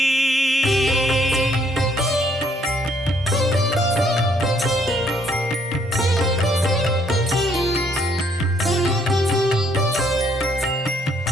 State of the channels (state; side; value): normal; both; correlation 0.67